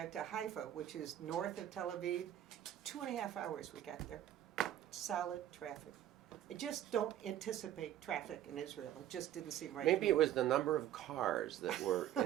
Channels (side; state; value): left; quieter; 11.8 dB